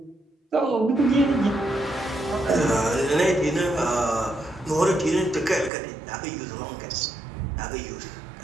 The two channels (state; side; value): drops out; left; at 5.7 s